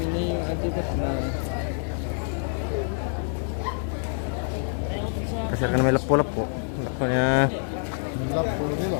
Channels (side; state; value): right; silent; 61 dB below the other